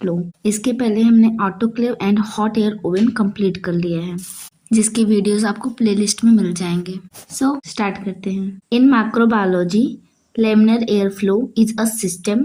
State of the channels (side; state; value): both; identical; correlation 1.00